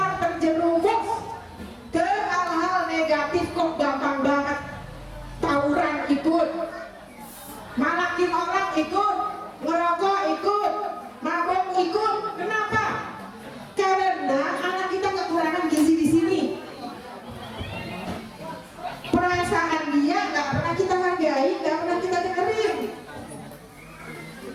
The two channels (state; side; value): identical; both; correlation 1.00